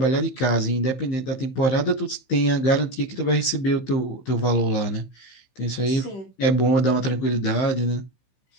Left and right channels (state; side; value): late; right; 15 ms